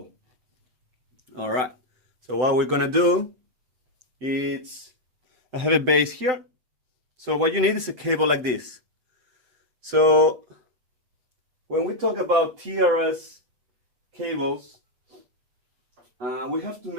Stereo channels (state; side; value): late; left; 7.8 ms